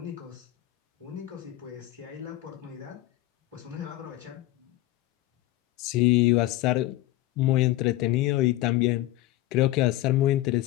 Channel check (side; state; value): right; quieter; 16.1 dB